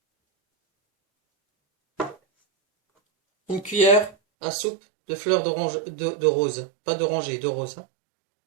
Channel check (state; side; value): drops out; left; at 4.2 s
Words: une cuillère à soupe de fleurs d'orange, de rose, pas d'oranger, de rose, hein.